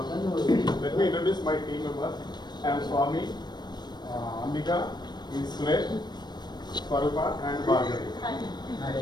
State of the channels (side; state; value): right; late; 0.21 ms